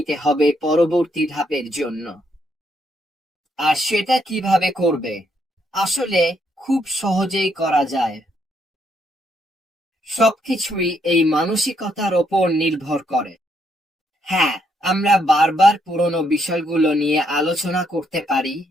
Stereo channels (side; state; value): both; normal; correlation 0.74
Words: হবে পরবর্তী ধাপের জন্য। আর সেটা কিভাবে করবে? আসলে খুব সহজেই করা যায়। সবকিছুই এই মানসিকতার ওপর নির্ভর করে। হ্যাঁ, আমরা বারবার পুরনো বিষয়গুলো নিয়ে আলোচনা করতে পারি।